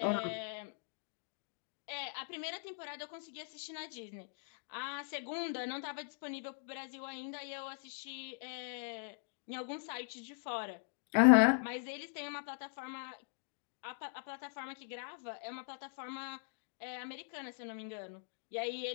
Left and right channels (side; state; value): right; silent; digital silence